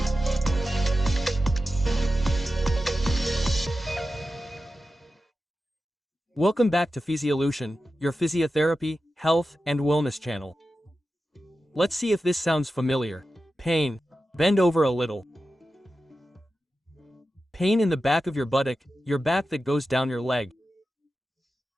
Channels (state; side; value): normal; both; correlation 0.92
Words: Welcome back to Fisiolution, your physiotherapy, health, and wellness channel. Let's see if this sounds familiar. Pain. Bend over a little. Pain in the back of your buttock, your back that goes down your leg.